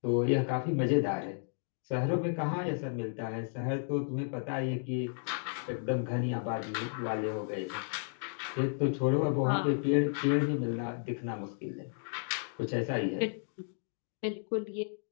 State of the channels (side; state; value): right; silent; digital silence